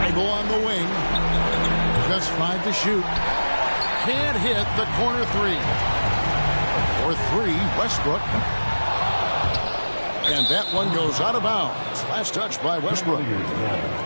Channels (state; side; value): inverted; both; correlation -1.00